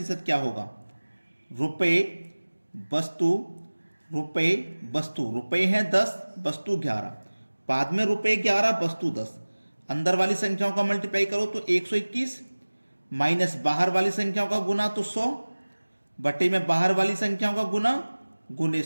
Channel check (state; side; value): inverted; both; correlation -1.00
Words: क्या होगा? रुपए वस्तु, रुपए वस्तु, रुपए हैं 10, वस्तु 11, बाद में रुपए 11 वस्तु 10। अंदर वाली संख्याओं का मल्टीप्लाई करो तो 121, माइनस बाहर वाली संख्याओं का गुना तो 100, बटे में बाहर वाली संख्याओं का गुना गुने